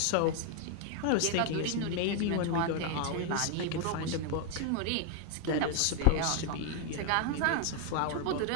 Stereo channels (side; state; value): both; different; correlation 0.01